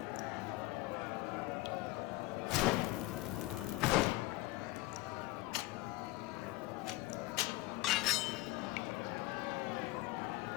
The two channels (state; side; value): quieter; right; 19.8 dB